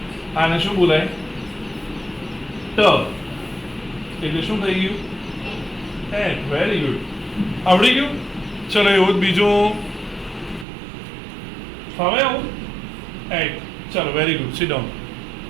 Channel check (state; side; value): drops out; left; at 10.7 s